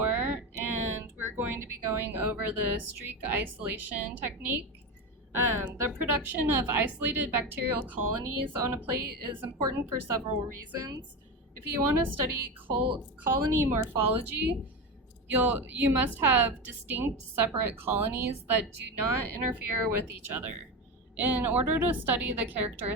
and we're going to be going over the streak isolation technique. The production of isolated bacterial colonies on a plate is important for several reasons. If you want to study colony morphology, you must have distinct separate colonies that do not interfere with each other. In order to study the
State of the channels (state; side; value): normal; both; correlation 0.20